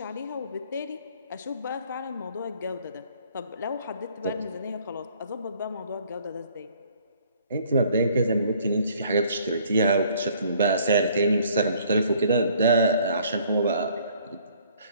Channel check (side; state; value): both; inverted; correlation -0.59